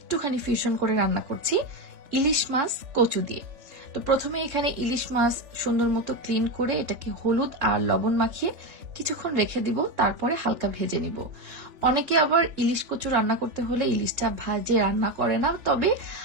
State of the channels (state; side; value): late; left; 3.4 ms